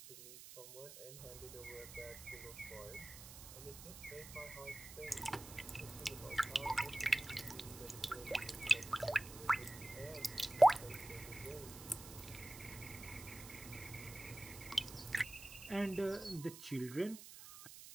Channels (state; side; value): noise; right; hiss, 14 dB below the sound